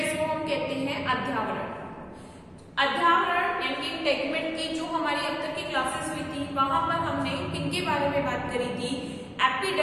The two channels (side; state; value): both; identical; correlation 1.00